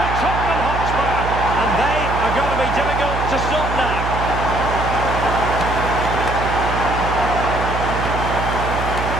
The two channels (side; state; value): right; noise; hum, 4 dB below the sound